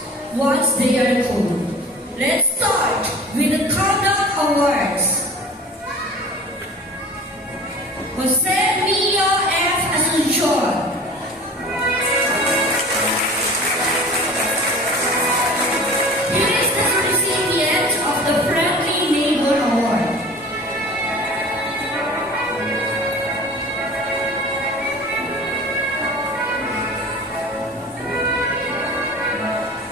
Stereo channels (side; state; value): both; normal; correlation 0.41